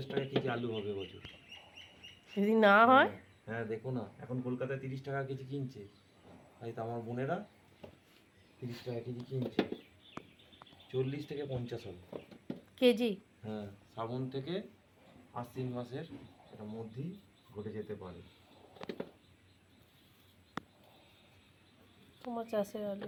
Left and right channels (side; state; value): both; identical; correlation 1.00